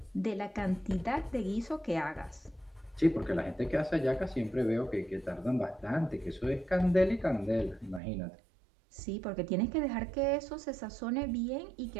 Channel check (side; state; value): left; drops out; at 8.0 s